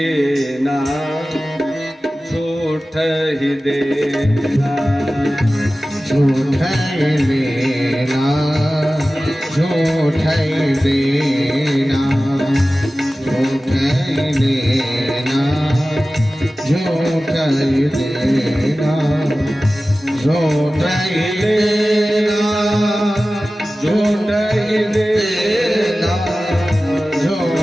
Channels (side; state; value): both; normal; correlation 0.96